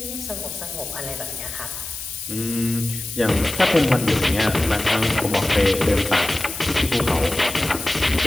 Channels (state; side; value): noise; left; hiss, 9 dB below the sound